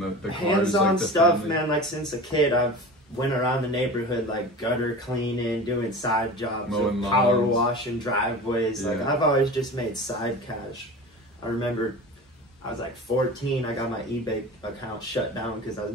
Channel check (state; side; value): normal; both; correlation 0.34